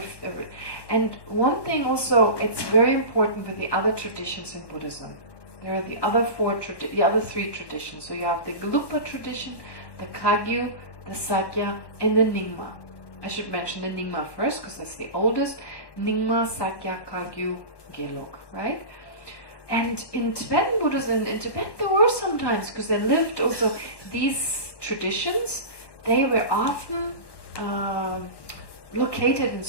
And one thing also, it's very important with the other traditions in Buddhism. There are the other three traditions. So you have the Gelugpa tradition, the Kagyu, the Sakya, and the Nyingma. I should mention the Nyingma first because that's the oldest. Nyingma, Sakya, Kagyu, Gelug, right? And in Tibetan Buddhism, in Tibet there were sometimes, because they lived also, these traditions, they were often located in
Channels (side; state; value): right; late; 1.1 ms